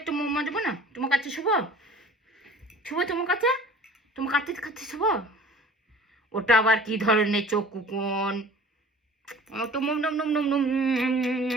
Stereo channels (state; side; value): normal; both; correlation 0.46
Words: মাম্মা দেবো না তোমার কাছে? শুভ শুভ তোমার কাছে, তোমার কাছে কাছে শুভ। ওটা আবার কি ধরনের চোখ কুকুন? তো মুম নম নম নম নম।